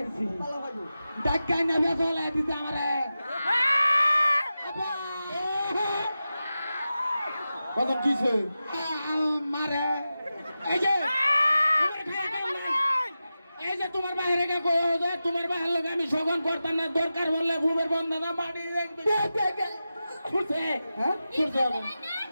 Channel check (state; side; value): inverted; both; correlation -0.93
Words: ভালো ভাই ডাক্কাই নেবে চলে দিতে আমারে কত কিছে মারে এই যে এই যে তোমার বাইরে কে কই যে তোমার বাইরে লোক আমি সগন করতাম না দরকার বললে ভূমের বন্ধনা মাটি ছুটছে হ্যাঁ ছুটছে